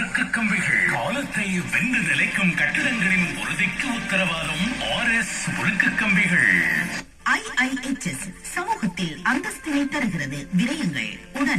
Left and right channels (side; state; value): both; identical; correlation 1.00